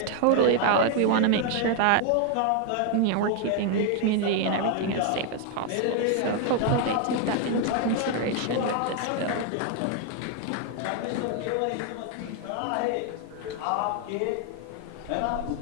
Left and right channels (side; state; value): both; different; correlation 0.00